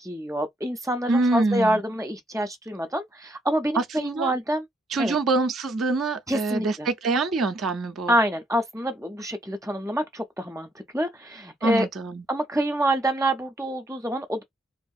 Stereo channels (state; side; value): normal; both; correlation 0.72